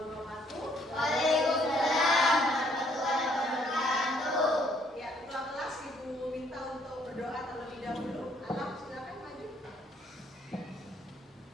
Waalaikumsalam warahmatullahi wabarakatuh. Ya, ketua kelas Ibu minta untuk berdoa terlebih dahulu. Alam, silakan maju.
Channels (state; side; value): normal; both; correlation 0.66